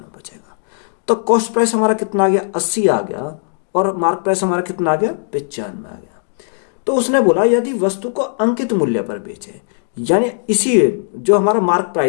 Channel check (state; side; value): silent; right; 67 dB below the other